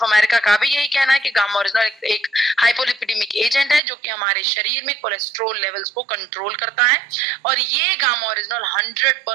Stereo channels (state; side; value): drops out; left; at 3.8 s